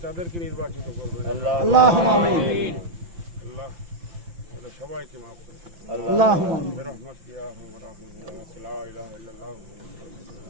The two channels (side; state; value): left; late; 5.8 ms